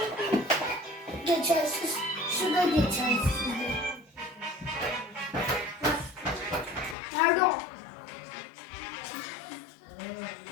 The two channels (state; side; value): drops out; right; at 7.0 s